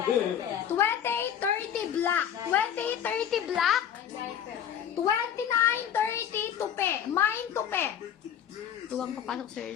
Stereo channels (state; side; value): quieter; right; 9.3 dB